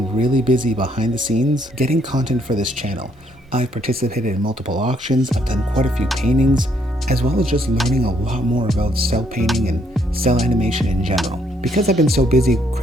really busy behind the scenes getting content for this channel. I've participated in multiple auctions, I've done quite a few paintings, as well as just learning a lot more about cell painting and cell animation in general. Because I've been so busy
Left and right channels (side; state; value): both; normal; correlation 0.70